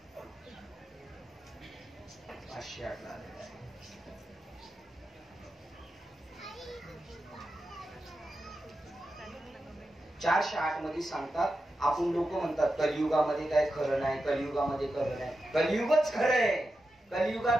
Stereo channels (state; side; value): normal; both; correlation 0.90